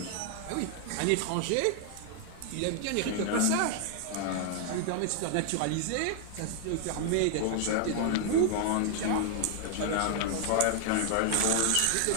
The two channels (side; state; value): both; different; correlation 0.00